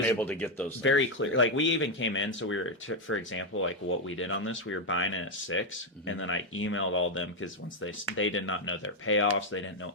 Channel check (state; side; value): normal; both; correlation 0.04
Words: able to get those things. Very clear. Like we even came in, so we were, for example, like what we did on this, we were buying it at 6, and then I emailed all of them because once they did not know their payoffs, they didn't know